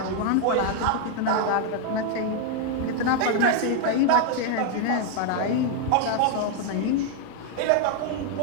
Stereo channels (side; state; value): both; different; correlation 0.00